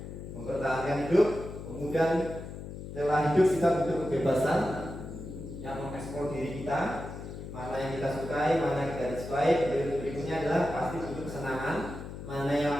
mempertahankan hidup. Kemudian setelah hidup kita butuh kebebasan yang mengeksplor diri kita, mana yang kita sukai, mana yang kita disukai. Berikutnya adalah pasti butuh kesenangan, mana yang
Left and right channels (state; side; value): noise; left; hum, 10 dB below the sound